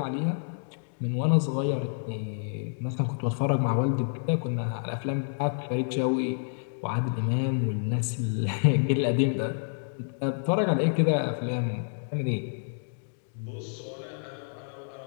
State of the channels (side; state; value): right; silent; digital silence